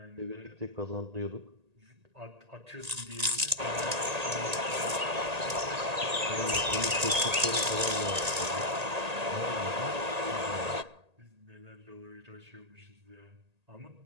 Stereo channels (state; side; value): late; left; 1.8 ms